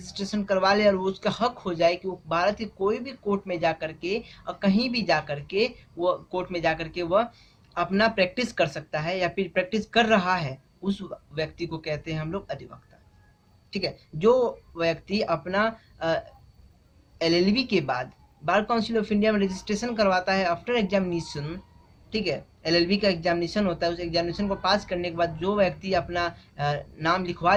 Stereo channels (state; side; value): identical; both; correlation 1.00